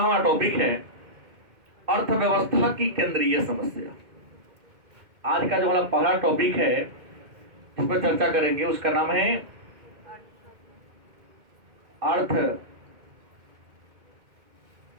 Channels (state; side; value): late; left; 2.1 ms